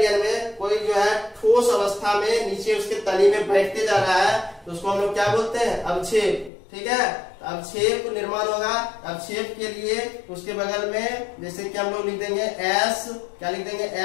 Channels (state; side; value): drops out; right; at 6.5 s